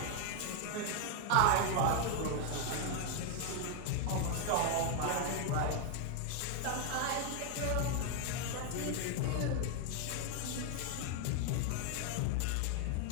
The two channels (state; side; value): different; both; correlation 0.00